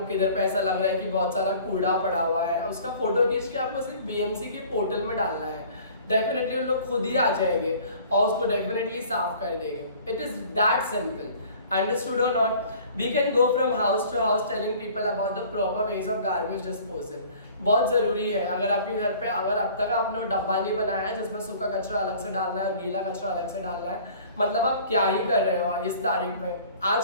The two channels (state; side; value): inverted; both; correlation -0.49